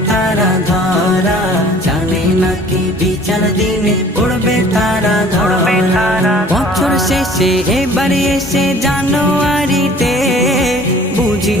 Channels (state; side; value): normal; both; correlation 0.51